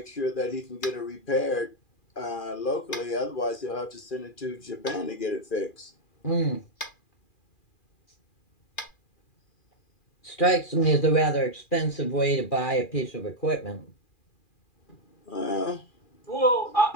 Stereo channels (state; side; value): late; right; 2.4 ms